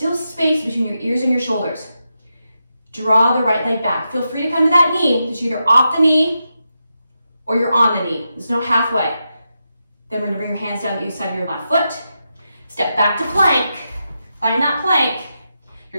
space between your ears and your shoulders. Draw the right leg back. Feel free to come to that knee. It's either off the knee or you're on the knee. There's no halfway. Then we're gonna bring your hands down the other side of your left foot. Step back to plank. Find that plank.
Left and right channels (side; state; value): both; inverted; correlation -0.87